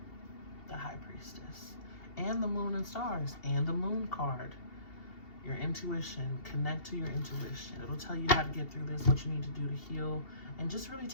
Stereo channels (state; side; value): late; right; 2.7 ms